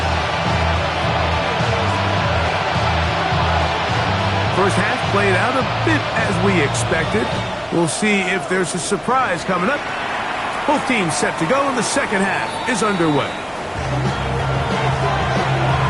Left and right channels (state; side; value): identical; both; correlation 1.00